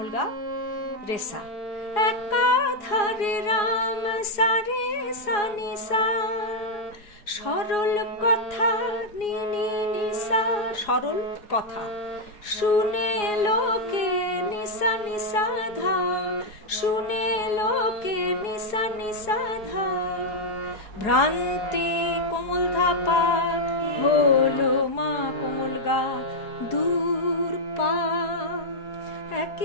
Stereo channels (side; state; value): right; late; 4.8 ms